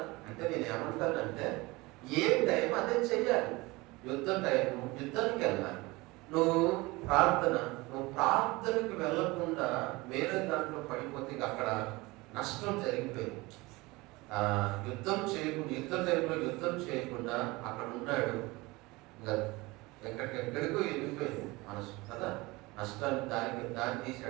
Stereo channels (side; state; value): left; quieter; 22.5 dB